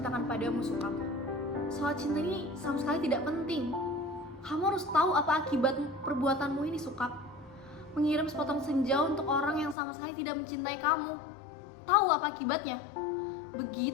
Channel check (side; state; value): right; drops out; at 9.8 s